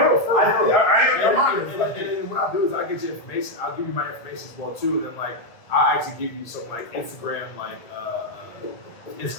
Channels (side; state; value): right; late; 1.4 ms